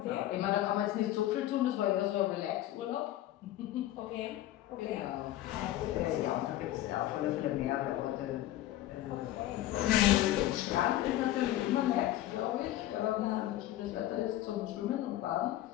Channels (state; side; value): quieter; right; 14.3 dB